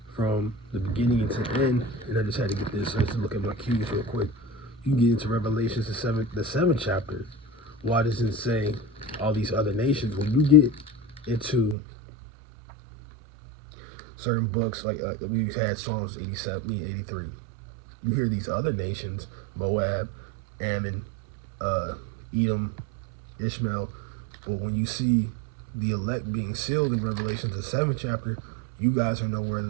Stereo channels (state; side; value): drops out; left; at 11.8 s